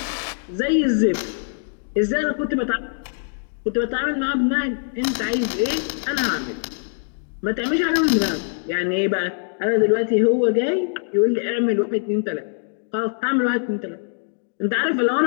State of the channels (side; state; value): right; silent; digital silence